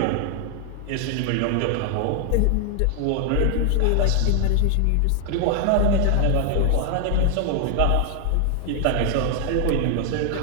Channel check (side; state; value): both; different; correlation 0.00